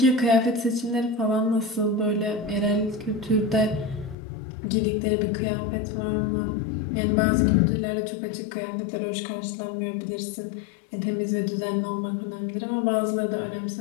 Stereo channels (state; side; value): drops out; right; at 4.2 s